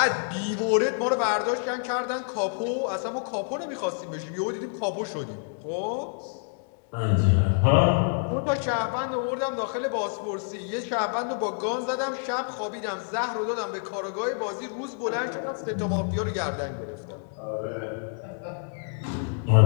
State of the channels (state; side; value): silent; right; 60 dB below the other